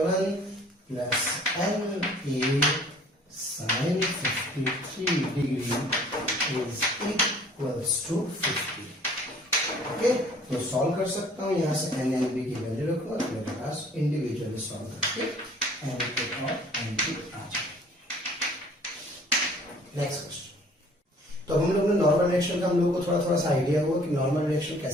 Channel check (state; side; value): normal; both; correlation 0.54